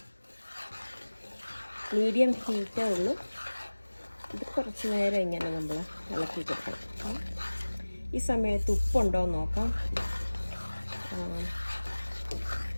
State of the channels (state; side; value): inverted; both; correlation -1.00